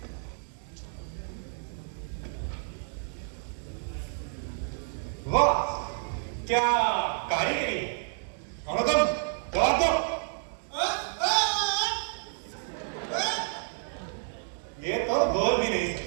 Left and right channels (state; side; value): silent; left; 58 dB below the other